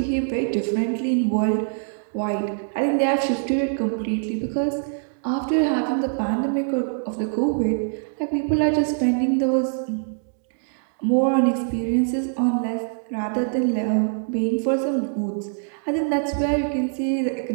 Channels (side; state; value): left; silent; digital silence